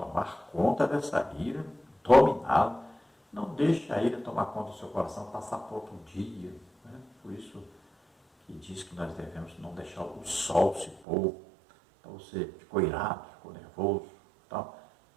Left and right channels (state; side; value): drops out; left; at 11.0 s